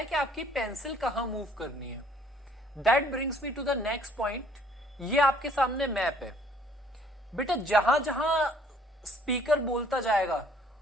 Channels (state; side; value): normal; both; correlation 0.60